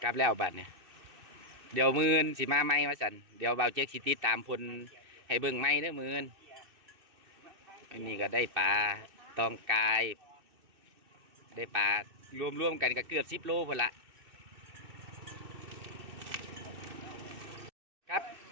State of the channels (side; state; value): left; late; 2.6 ms